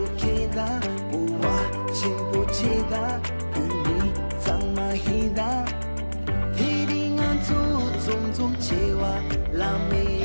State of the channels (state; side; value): inverted; both; correlation -1.00